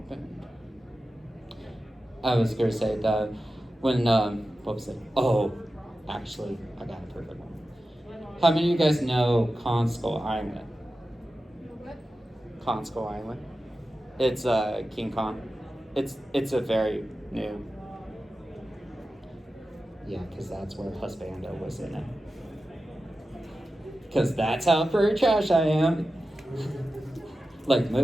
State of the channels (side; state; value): both; normal; correlation 0.93